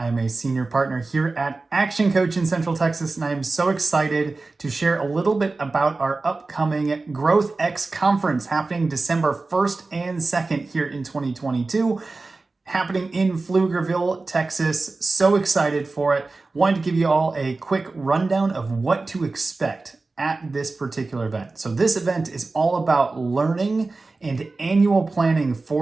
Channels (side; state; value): left; quieter; 3.6 dB